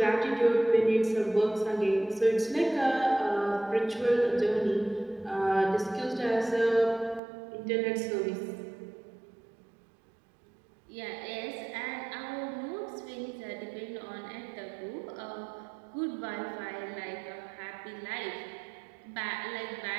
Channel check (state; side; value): drops out; left; at 7.2 s